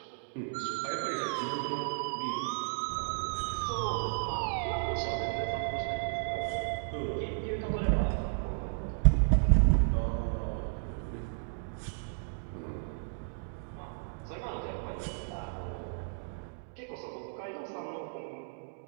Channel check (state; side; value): silent; left; digital silence